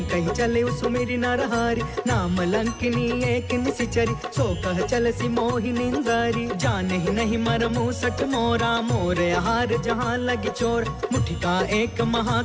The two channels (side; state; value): both; identical; correlation 1.00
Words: चले सुमिरि नरहारी। नाम लंकिनी एक निशिचरी, सो कह चलसी मोहि निंदारी। जाने ही नहीं मरमु सट मोरा, मोर आहार जहाँ लगी चोर। मुठिका एक